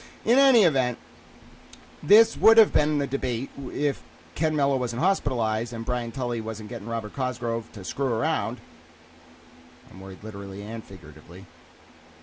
In any event, this would have been the debate if Ken Mello wasn't hospitalized and Brian Tully wasn't getting Robert Cosgrove to screw around. I'm worried literally and figuratively,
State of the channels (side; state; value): both; identical; correlation 1.00